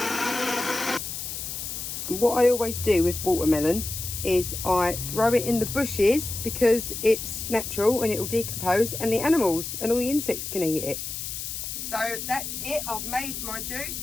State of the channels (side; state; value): left; noise; hiss, 6 dB below the sound